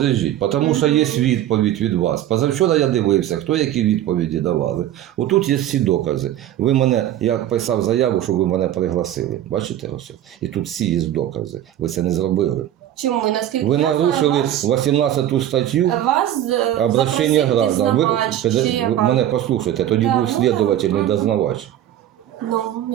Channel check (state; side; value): quieter; left; 12.1 dB